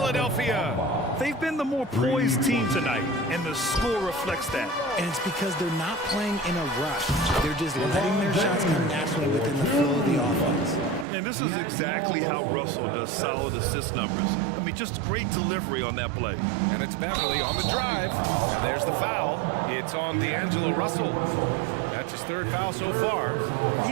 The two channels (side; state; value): left; drops out; at 11.1 s